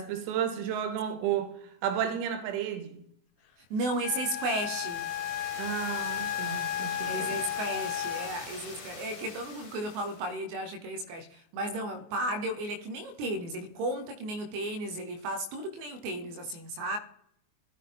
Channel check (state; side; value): late; left; 24 ms